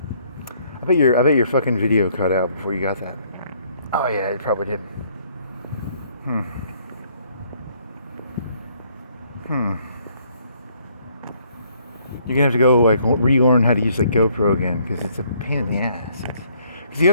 I bet your fucking video cut out before you got that. Oh yeah, it probably did. You're gonna have to go like relearn how to use the GoPro again because it's a pain in the ass. Because you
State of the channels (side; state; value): both; inverted; correlation -0.65